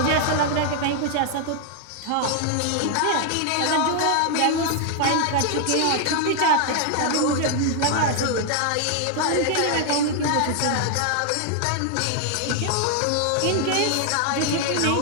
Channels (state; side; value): different; both; correlation 0.00